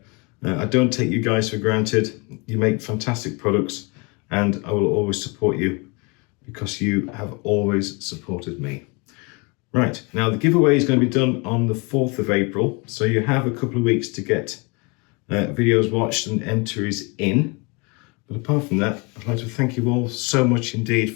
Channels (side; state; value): right; quieter; 29.6 dB